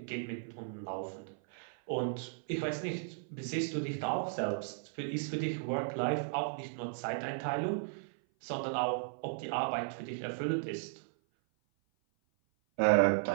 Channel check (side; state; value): left; silent; 54 dB below the other